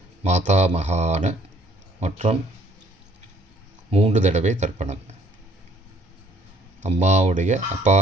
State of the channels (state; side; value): normal; both; correlation 0.61